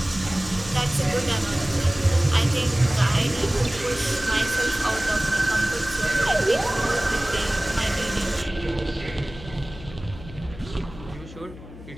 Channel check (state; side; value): noise; left; hum, 16 dB below the sound